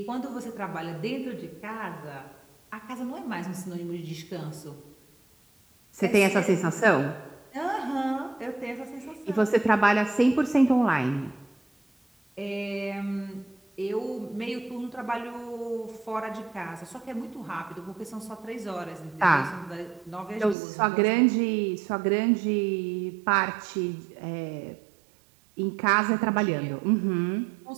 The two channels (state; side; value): drops out; left; at 20.6 s